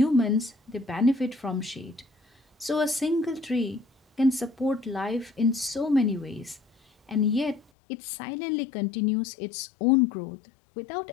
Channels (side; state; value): right; drops out; at 7.7 s